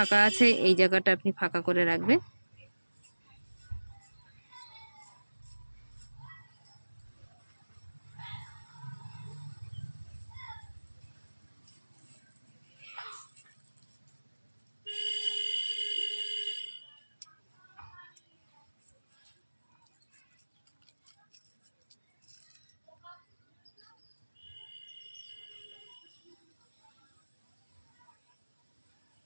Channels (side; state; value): both; inverted; correlation -1.00